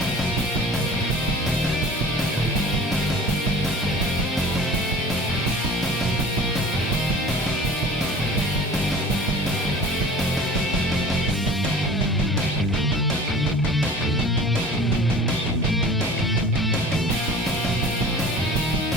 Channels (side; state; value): both; normal; correlation 0.42